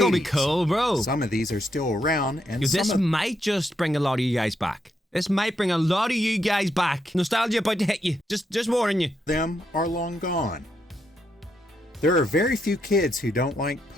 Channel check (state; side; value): normal; both; correlation 0.80